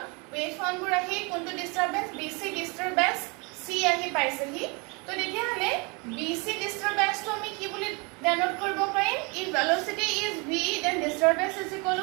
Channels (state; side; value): quieter; left; 30.2 dB